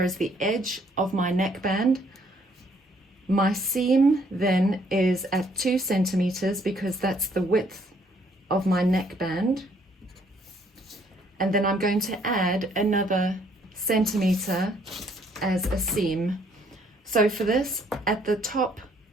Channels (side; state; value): both; normal; correlation 0.66